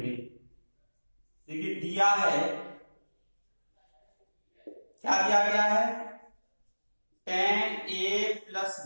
देखिए दिया है, क्या दिया गया है, tan a प्लस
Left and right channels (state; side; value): inverted; both; correlation -1.00